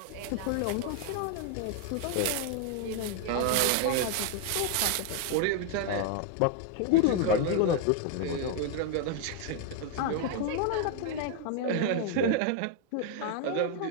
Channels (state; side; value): different; both; correlation 0.01